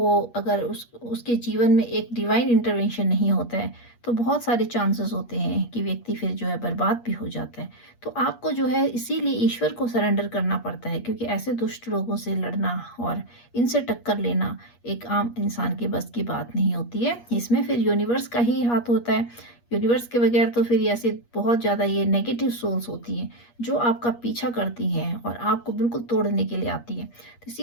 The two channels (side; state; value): right; late; 8.4 ms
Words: अगर उसके जीवन में एक डिवाइन इंटरवेंशन नहीं होता है, तो बहुत सारे चांसेस होते हैं कि व्यक्ति फिर जो है बर्बाद भी हो जाता है। तो आपको जो है इसीलिए ईश्वर को सरेंडर करना पड़ता है, क्योंकि ऐसे दुष्ट लोगों से लड़ना और इनसे टक्कर लेना एक आम इंसान के बस की बात नहीं होती है। इसमें फिर यूनिवर्स का ही हाथ होता है। यूनिवर्स के बगैर तो फिर ऐसे बहुत ज़्यादा ये नेगेटिव सोल्स होती हैं, जो आपका पीछा करती हैं और आपको बिल्कुल तोड़ने के लिए आती हैं। तो